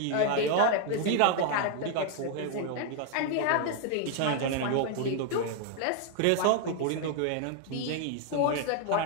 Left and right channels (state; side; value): different; both; correlation 0.00